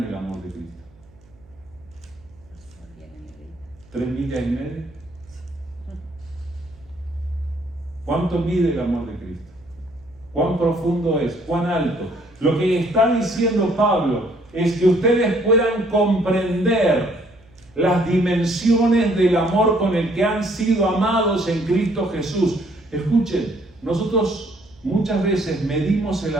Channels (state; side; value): noise; right; hum, 28 dB below the sound